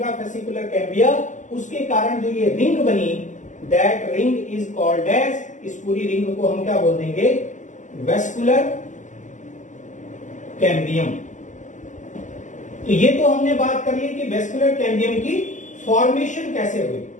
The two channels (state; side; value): late; right; 0.36 ms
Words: cambia, उसके कारण जो ये रिंग बनी, that ring is called as, इस पूरी रिंग को हम क्या बोल देंगे, वेस्कुलर कैम्बियम। तो ये तो हमने बात कर ली कि वेस्कुलर कैम्बियम की फॉर्मेशन कैसे हुई,